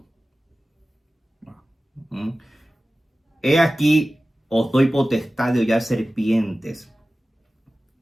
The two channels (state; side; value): normal; both; correlation 0.96